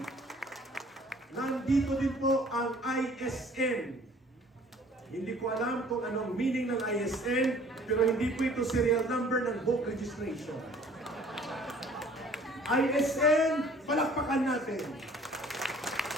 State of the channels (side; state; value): both; normal; correlation 0.53